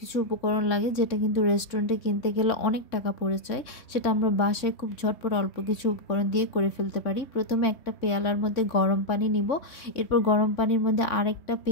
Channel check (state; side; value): late; right; 3.6 ms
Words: উপকরণ লাগে, যেটা কিন্তু রেস্টুরেন্টে কিনতে গেলে অনেক টাকা পড়ে যায়। সেটা আমরা বাসায় খুব ঝটপট অল্প কিছু উপকরণ দিয়ে করে ফেলতে পারি। প্রথমে একটা পেয়ালার মধ্যে গরম পানি নিব। এরপর গরম পানির মধ্যে আরেকটা